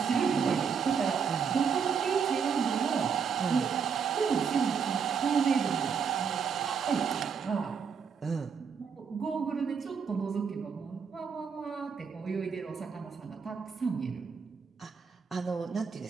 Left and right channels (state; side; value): quieter; left; 6.4 dB